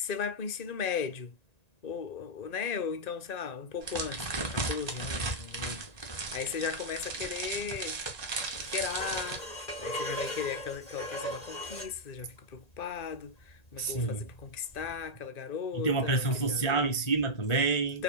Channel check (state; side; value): late; right; 1.9 ms